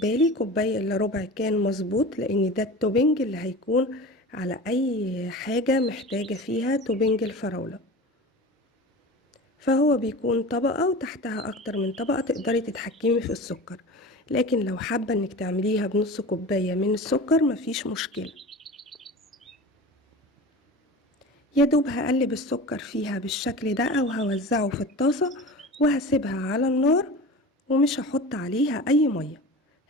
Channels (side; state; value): both; normal; correlation 0.34